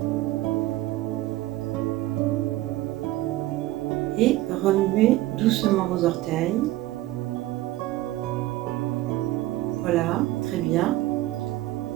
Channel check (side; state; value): left; quieter; 16.4 dB